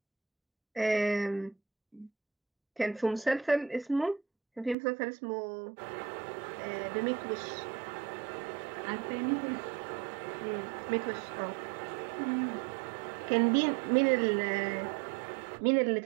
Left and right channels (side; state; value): left; drops out; at 4.8 s